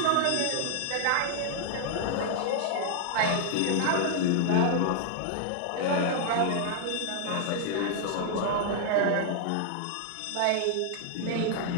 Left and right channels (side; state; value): both; different; correlation 0.00